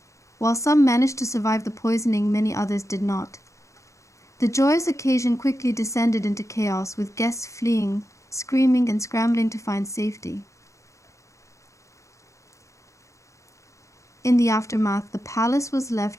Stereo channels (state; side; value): late; right; 0.15 ms